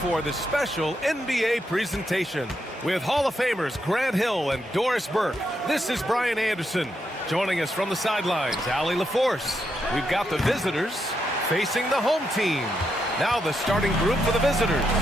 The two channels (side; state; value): both; normal; correlation 0.81